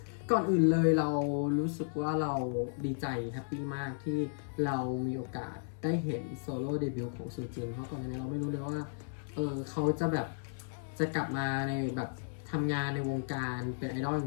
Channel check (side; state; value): right; silent; 55 dB below the other